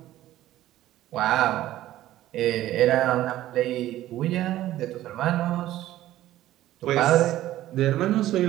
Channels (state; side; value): quieter; left; 14.3 dB